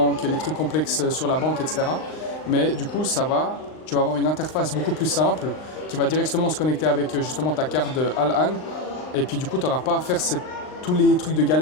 les trucs complexes sur la banque, etc. Mais du coup, tu vas avoir une interface beaucoup plus simple qui va directement se connecter avec justement ta carte Al-An. Et puis du coup, tu n'auras pas à faire tous les trucs de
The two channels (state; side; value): late; right; 39 ms